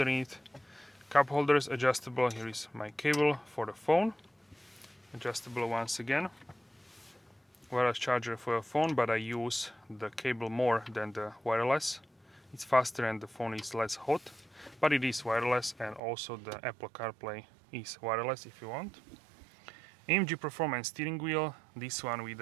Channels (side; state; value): left; drops out; at 16.0 s